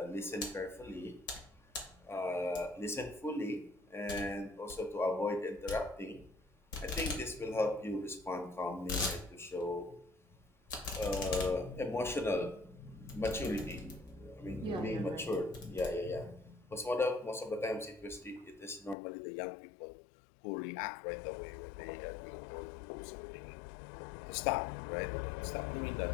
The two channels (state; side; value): drops out; right; at 18.9 s